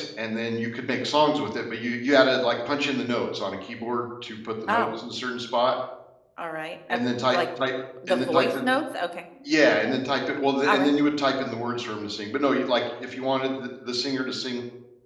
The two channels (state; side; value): identical; both; correlation 1.00